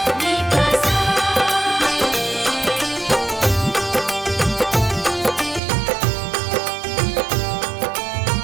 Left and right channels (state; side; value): drops out; left; at 5.6 s